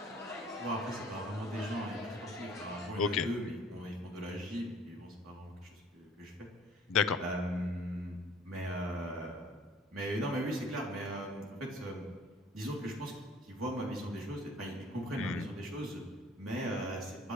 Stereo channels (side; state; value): both; normal; correlation 0.53